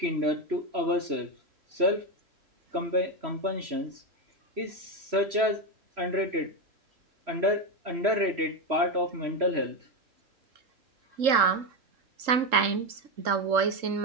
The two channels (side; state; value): left; late; 3.7 ms